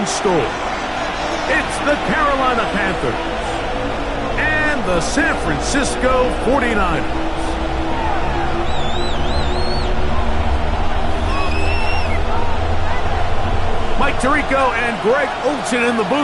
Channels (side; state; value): both; identical; correlation 1.00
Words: store. It's the Carolina Panthers and the San Francisco 49ers. Mike Tirico and Greg Olsen in the